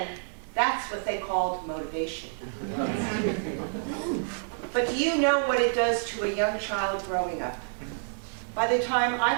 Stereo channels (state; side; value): silent; left; 59 dB below the other